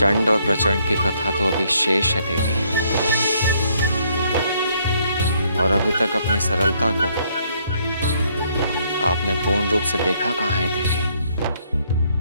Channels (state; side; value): inverted; both; correlation -0.68